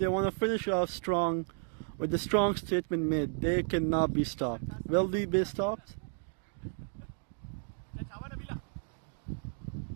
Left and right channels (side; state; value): left; silent; 56 dB below the other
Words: want to finish off strong with the strong statement made. They cannot be stopped. Will they be stopped?